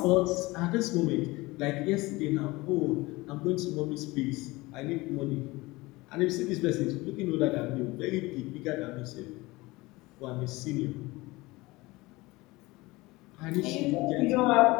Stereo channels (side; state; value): right; quieter; 21.6 dB